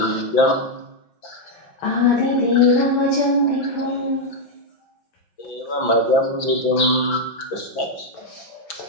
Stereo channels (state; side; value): late; right; 5.9 ms